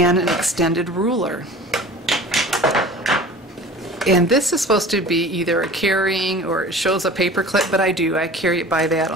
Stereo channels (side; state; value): both; normal; correlation 0.41